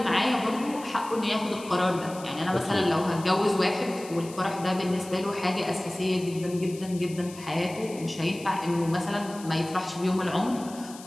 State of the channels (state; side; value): noise; left; hiss, 17 dB below the sound